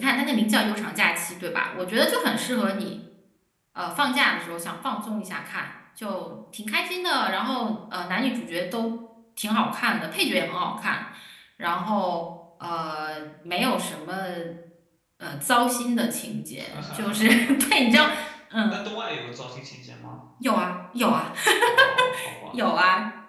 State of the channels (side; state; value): both; identical; correlation 1.00